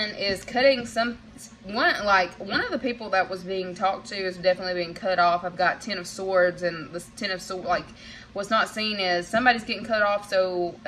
is cutting one of the people that was being talked to is definitely being cut off. I've got 10 of Swords, and this 10 of Swords, like, what's not seen is somebody's getting cut off so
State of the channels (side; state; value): both; identical; correlation 1.00